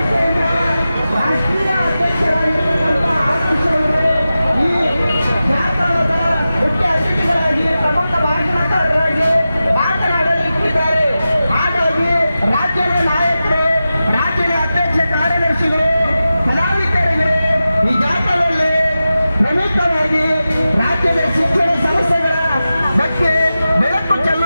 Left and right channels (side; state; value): both; inverted; correlation -0.93